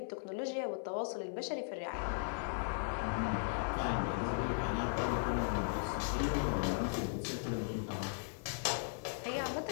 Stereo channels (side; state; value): right; silent; digital silence